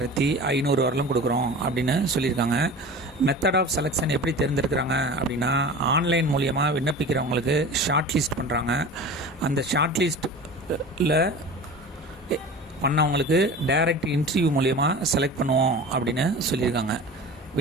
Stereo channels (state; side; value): normal; both; correlation 0.35